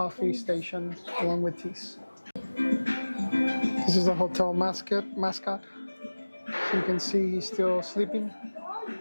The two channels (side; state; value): both; inverted; correlation -1.00